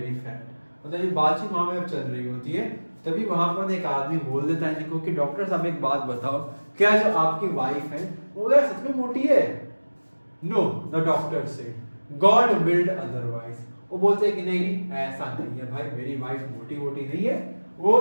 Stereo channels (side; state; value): both; inverted; correlation -1.00